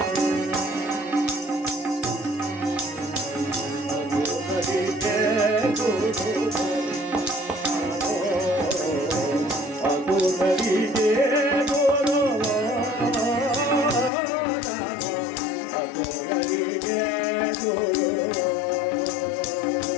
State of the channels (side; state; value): right; drops out; at 14.1 s